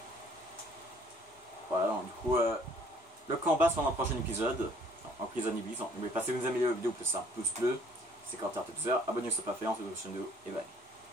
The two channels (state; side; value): normal; both; correlation 0.58